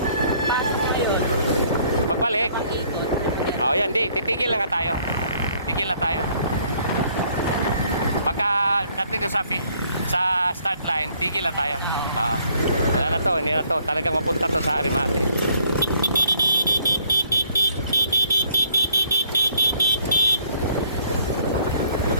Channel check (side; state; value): both; inverted; correlation -0.62